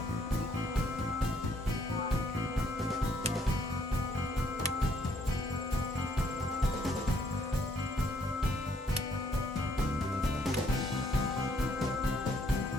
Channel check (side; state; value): both; normal; correlation 0.68